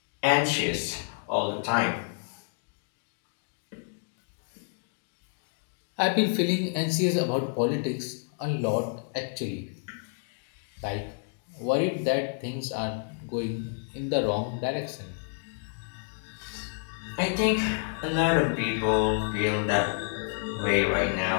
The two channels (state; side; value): silent; right; 58 dB below the other